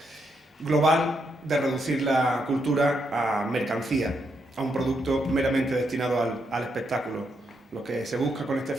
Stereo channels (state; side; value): normal; both; correlation 0.79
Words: global de reducir la cultura a mercancía, a un producto meramente destinado al espectáculo. Lo que se busca con este